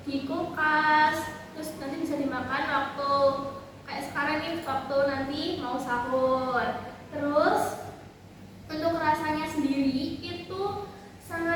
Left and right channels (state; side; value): identical; both; correlation 1.00